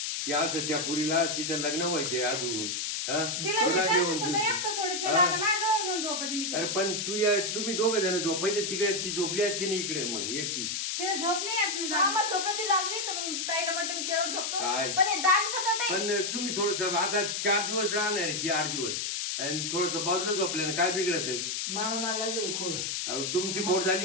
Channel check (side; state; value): left; noise; hiss, 2 dB below the sound